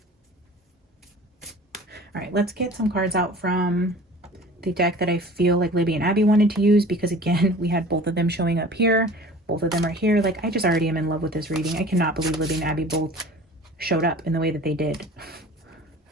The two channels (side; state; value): both; normal; correlation 0.43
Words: All right, let's get some cards out from the deck that I feel like Libby and Abby wanted to use, because again, we had both of them showing up here. Both of them are here. Like, I just already am in love with this reading. I cannot believe Libby and Abby both showed up in the way that they did.